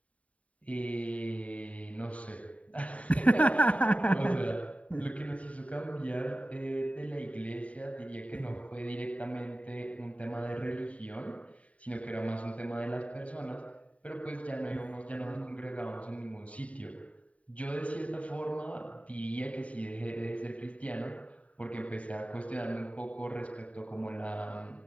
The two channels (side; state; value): right; late; 0.067 ms